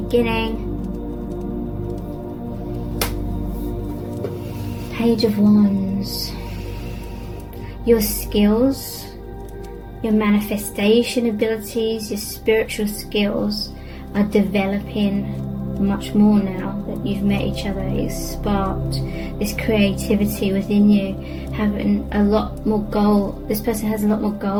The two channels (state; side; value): identical; both; correlation 1.00